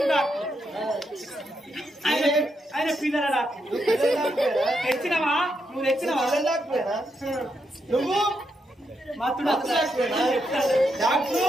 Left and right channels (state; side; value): normal; both; correlation 0.81